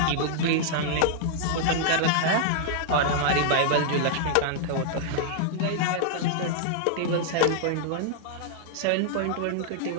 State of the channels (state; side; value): different; both; correlation -0.01